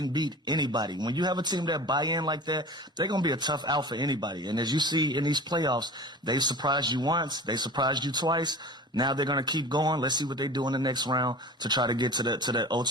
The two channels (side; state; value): both; normal; correlation 0.37